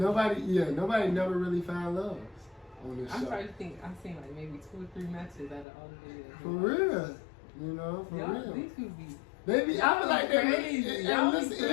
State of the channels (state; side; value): drops out; right; at 5.7 s